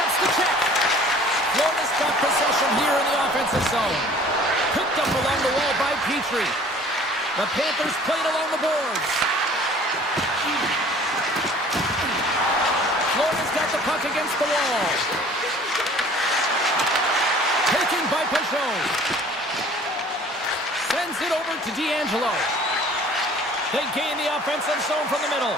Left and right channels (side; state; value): both; normal; correlation 0.50